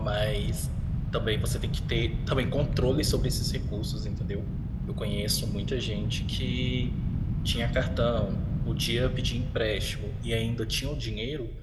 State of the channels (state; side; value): identical; both; correlation 1.00